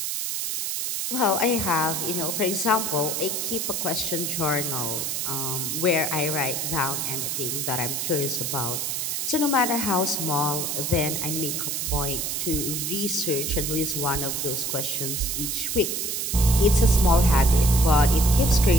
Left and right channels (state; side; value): noise; right; hiss, 2 dB below the sound